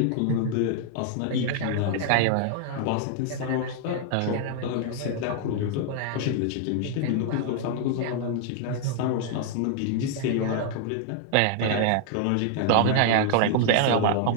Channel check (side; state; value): both; different; correlation 0.00